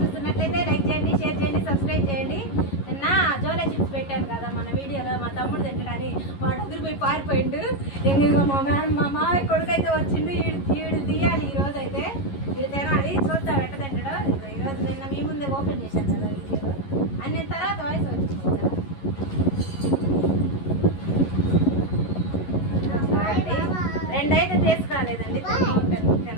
చూస్తున్నట్లయితే like చేయండి, షేర్ చేయండి, సబ్స్క్రైబ్ చేయండి. నిన్న జోలే చిప్స్ పెట్టాను కదా మన వీడియోలో, మా తమ్ముడు తింటాడని వాడు ఎదురుపోయి పారిపోయిండు. ఇంకా మా మామయ్య కొడుకు అయితే వచ్చిండు, ఈడు తీయాలి ఈరోజు అయితే, ఇది తినాలి. చూద్దాం ఎట్ట తింటాడో. ఈరోజు నిన్న మీ ముందే ఓపెన్ చేశాను కదా వీడియోలో, అన్ని తర్వాత వాయిస్ వచ్చింది. రెండైతే తీసుకురాలేదండి,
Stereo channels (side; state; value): right; late; 11 ms